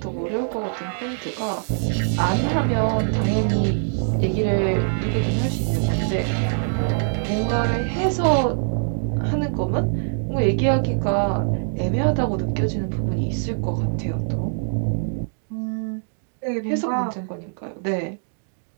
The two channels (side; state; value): left; silent; digital silence